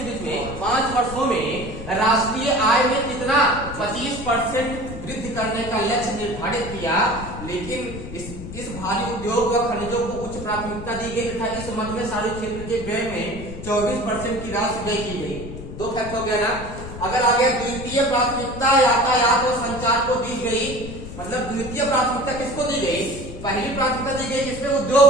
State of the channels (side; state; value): left; noise; rumble, 10 dB below the sound